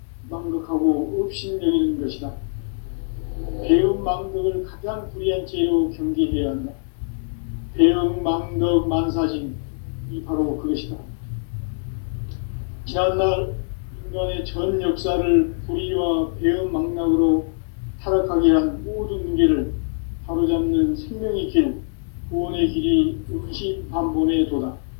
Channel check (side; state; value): right; silent; 63 dB below the other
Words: 망극하고 업신여기는 것이다. 배은망덕을 가장 불의한 죄로 경계해야 한다. 배은망덕 만사징이 바로 그것이다. 지난날 인간의 전 역사를 불의와 배은망락으로 타락하게 한 모든 문제를 바로잡는 생명의 길, 구원의 길이 원시반본의 도다.